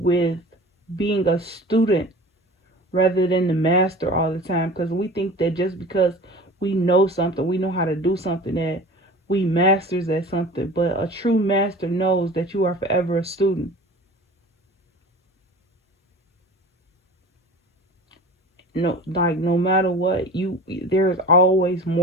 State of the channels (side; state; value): both; normal; correlation 0.39